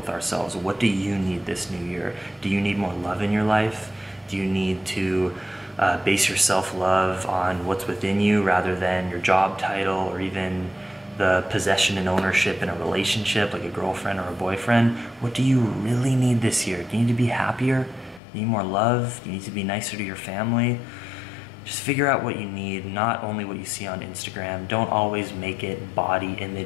ourselves. What do you need this new year? Do you need more love in your life? Do you need to base your self-love on what's within you rather than your job title or even the possession and ownership in a relationship like a girlfriend or a boyfriend? What do you really need this year? Do you need to be happier? Do you need more love? Do you need to be nicer to your family? Just figure out what you need, not only what you see on Instagram. Don't always make it body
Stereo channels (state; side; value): drops out; right; at 18.2 s